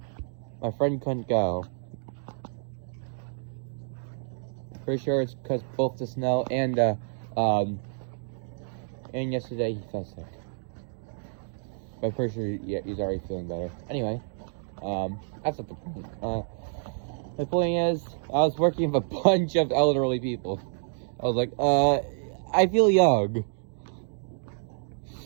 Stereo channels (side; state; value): left; silent; digital silence